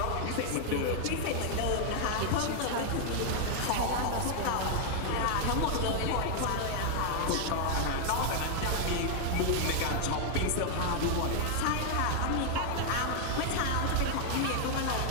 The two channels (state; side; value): different; both; correlation 0.00